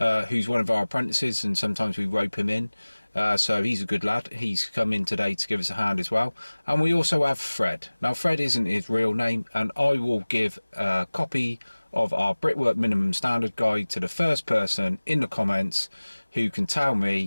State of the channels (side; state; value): both; inverted; correlation -1.00